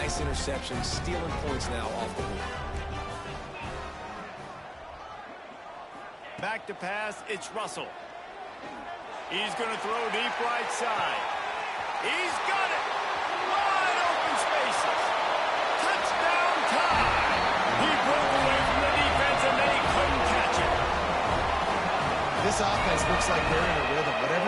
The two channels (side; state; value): both; identical; correlation 1.00